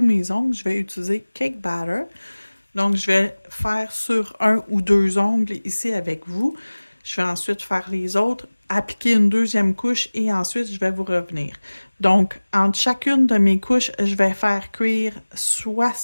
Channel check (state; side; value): inverted; both; correlation -1.00